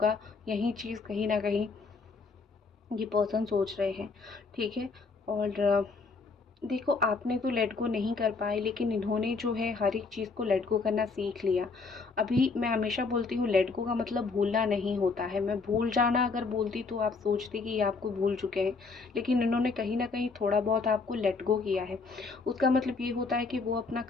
यही चीज़ कहीं ना कहीं ये पर्सन सोच रहे हैं। ठीक है, और देखो आपने तो लेट गो नहीं कर पाए, लेकिन इन्होंने जो है हर एक चीज़ को लेट गो करना सीख लिया। अभी मैं हमेशा बोलती हूँ लेट गो का मतलब भूलना नहीं होता है। मैं भूल जाना अगर बोलती तो आप सोचते कि ये आपको भूल चुके हैं, लेकिन इन्होंने कहीं ना कहीं थोड़ा बहुत आपको लेट गो किया है। उसका मतलब ये होता है कि वो अपना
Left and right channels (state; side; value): quieter; right; 4.3 dB